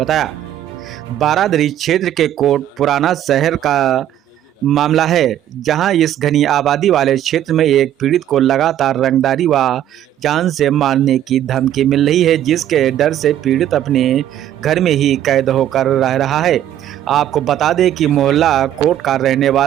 बारादरी क्षेत्र के कोट पुराना शहर का मामला है, जहां इस घनी आबादी वाले क्षेत्र में एक पीड़ित को लगातार रंगदारी व जान से मारने की धमकी मिल रही है, जिसके डर से पीड़ित अपने घर में ही कैद होकर रह रहा है। आपको बता दें कि मोहल्ला कोट का रहने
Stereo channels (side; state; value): left; quieter; 11.5 dB